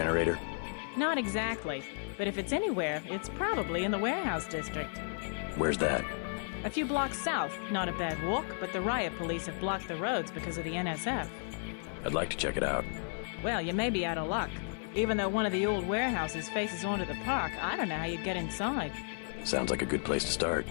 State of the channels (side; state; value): right; silent; 55 dB below the other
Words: Not exactly, but if it's anywhere, it's probably in the warehouse district. Where's that? A few blocks south. Not a bad walk, but the riot police have blocked the roads because of the NSF. I'd like to check it out. Well, you may be out of luck. Even though one of the old warehouses faces onto the park, I don't know how you'd get inside. Sounds like a good place to start.